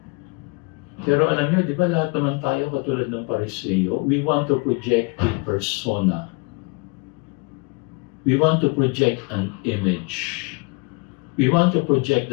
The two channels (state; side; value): quieter; right; 29.0 dB